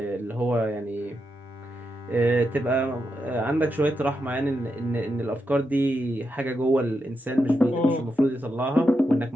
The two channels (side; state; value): both; normal; correlation 0.85